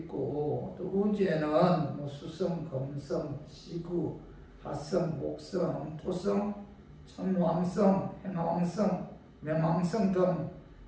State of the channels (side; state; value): both; identical; correlation 1.00